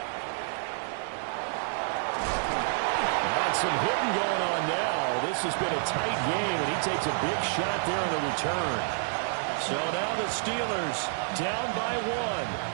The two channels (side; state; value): left; silent; 59 dB below the other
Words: Got some hitting going on now. This has been a tight game, and he takes a big shot there on the return. So now the Steelers down by